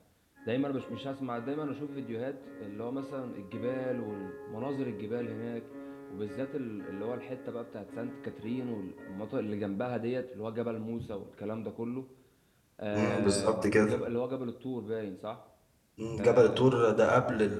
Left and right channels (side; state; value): both; identical; correlation 1.00